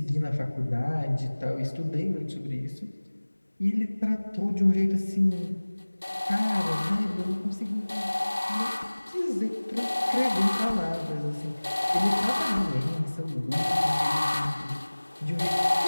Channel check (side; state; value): both; inverted; correlation -1.00